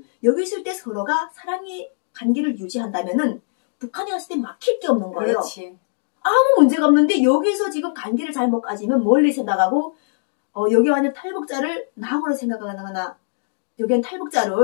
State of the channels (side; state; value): right; silent; digital silence